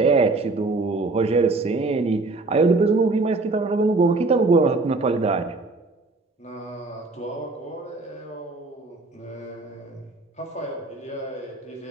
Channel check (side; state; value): left; quieter; 3.3 dB